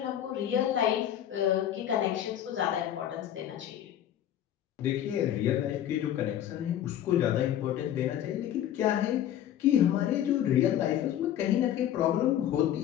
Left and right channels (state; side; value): quieter; right; 11.2 dB